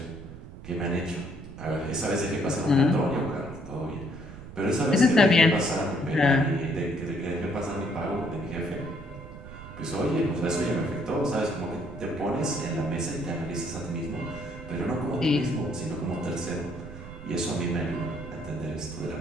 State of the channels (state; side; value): noise; right; rumble, 14 dB below the sound